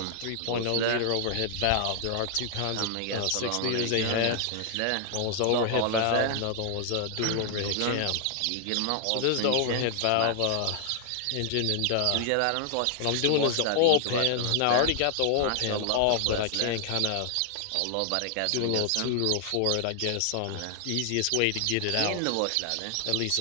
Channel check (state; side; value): different; both; correlation 0.00